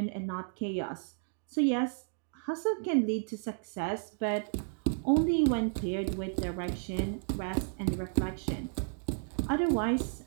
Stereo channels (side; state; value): left; silent; digital silence